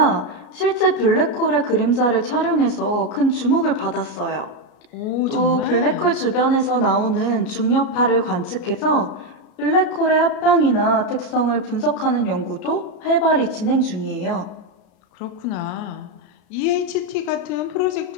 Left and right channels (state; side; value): late; right; 33 ms